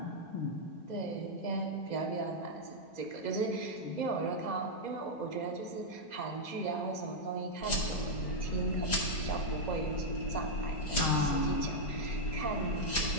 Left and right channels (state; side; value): late; right; 4.9 ms